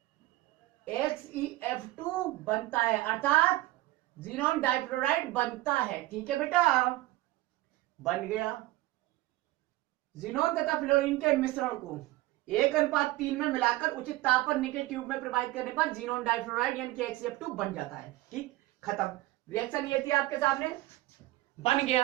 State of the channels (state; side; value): quieter; left; 18.2 dB